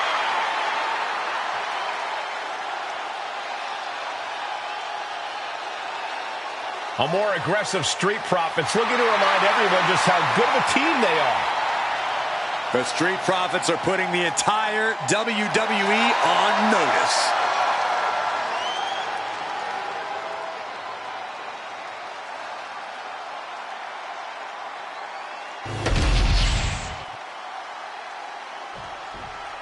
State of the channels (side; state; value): both; identical; correlation 1.00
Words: A more aggressive Street Profits looking to remind everyone just how good of a team they are. The Street Profits are putting the entire WWE on notice.